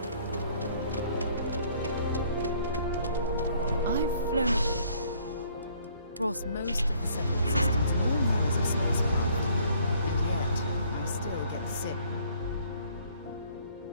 I've flown across most of the seven systems, all models of spacecraft, and yet I still get sick.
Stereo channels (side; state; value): both; inverted; correlation -0.61